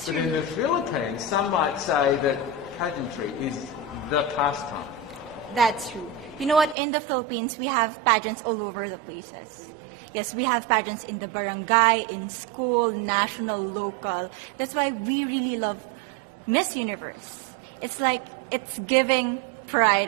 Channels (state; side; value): drops out; left; at 6.8 s